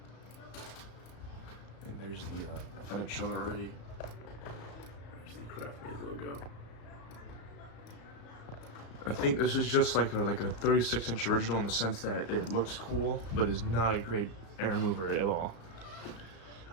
And there's the, I thought I'd shown it already. There's the Craftmade logo. I think this is just like a 36-inch original in the sense that it looks cool, but is not a great air mover at all.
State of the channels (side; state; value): right; late; 35 ms